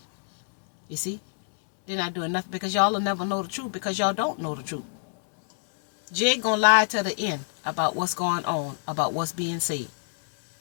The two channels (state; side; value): silent; right; digital silence